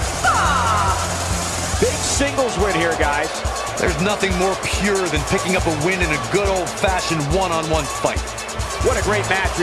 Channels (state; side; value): identical; both; correlation 1.00